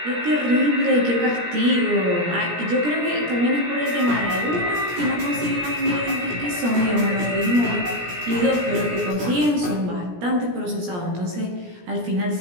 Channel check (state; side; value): late; left; 17 ms